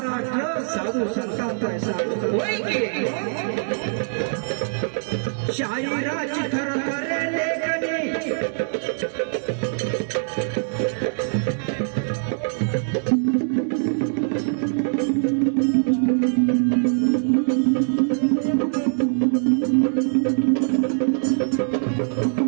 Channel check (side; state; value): left; silent; digital silence